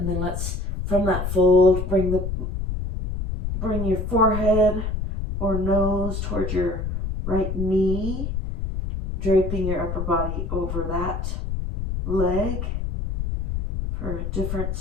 then let's, from that fold, bring your forehead or nose towards your right knee, draping your upper body over that leg for a different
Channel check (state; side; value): noise; left; rumble, 3 dB below the sound